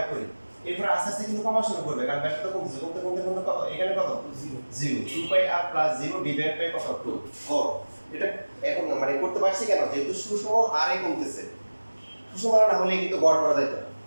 করি। এরপর আস্তে আস্তে কিন্তু কমা শুরু করবে, কারণ ব্যাসার্ধ কমতেছে, কমতে কমতে কমতে কত, এখানে কত 0, 2πr + 0 ডিভাইড বাই কত 2 গড়। এটা এখন মানে করতে পারছি কেন, যেহেতু সুষম হারে কমতেছে, সুষম হারে না হলে কিন্তু গড় করা যেত না,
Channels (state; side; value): inverted; both; correlation -1.00